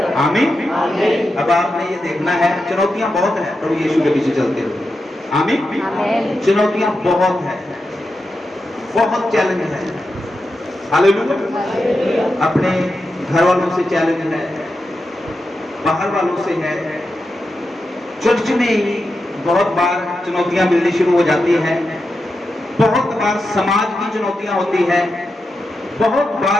आमीन। अब आपने ये देखना है, चुनौतियां बहुत है प्रभु यीशु के पीछे चलते हुए। आमीन। चुनौतियां बहुत है, बहुत चैलेंज है। हालेलुया। अपने घर वालों से चैलेंज है, बाहर वालों से है, चर्च में ही बहुत बार चुनौतियां मिलनी शुरू हो जाती हैं। बहुत बार समाज की चुनौतियां होती हैं, बहुत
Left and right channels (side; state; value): both; normal; correlation 0.88